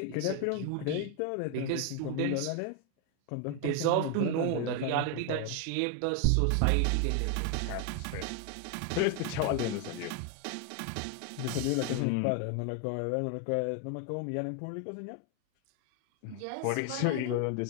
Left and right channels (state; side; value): different; both; correlation 0.01